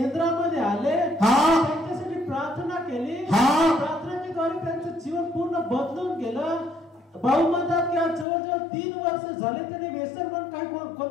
आले, त्यांच्यासाठी प्रार्थना केली. प्रार्थनेद्वारे त्यांचं जीवन पूर्ण बदलून गेलं. भाऊ म्हणतात की आज जवळजवळ 3 वर्ष झाले त्यांनी व्यसन म्हणून काही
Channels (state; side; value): drops out; right; at 8.2 s